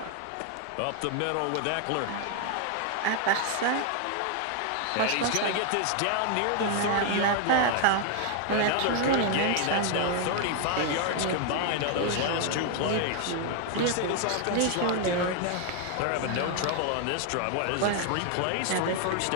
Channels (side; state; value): both; different; correlation 0.00